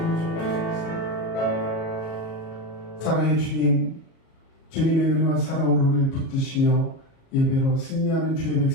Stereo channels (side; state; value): right; late; 37 ms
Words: 사랑의 주님, 주님의 은혜와 사랑으로 우리를 붙드시며 예배로 승리하는 주의